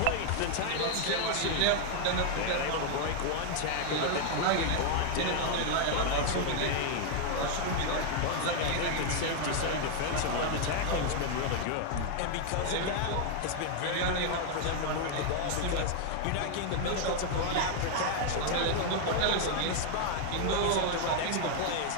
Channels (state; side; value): different; both; correlation 0.00